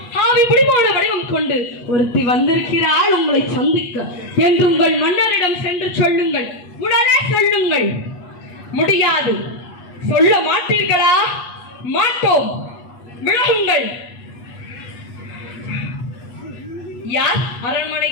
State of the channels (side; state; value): right; late; 8.3 ms